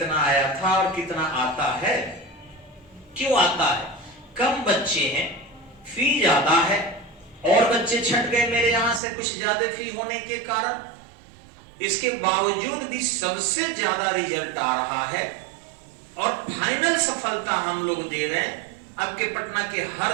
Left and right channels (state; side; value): drops out; left; at 9.0 s